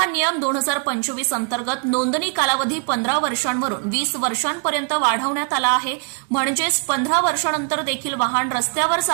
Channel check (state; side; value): quieter; left; 37.0 dB